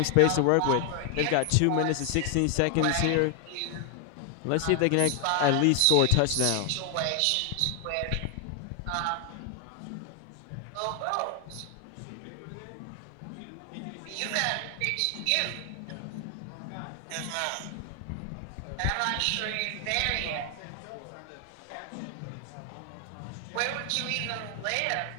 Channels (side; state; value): both; different; correlation 0.00